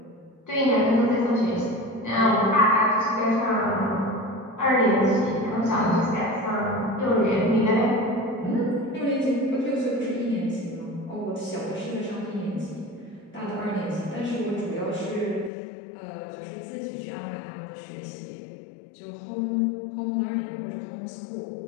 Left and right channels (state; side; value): drops out; right; at 15.5 s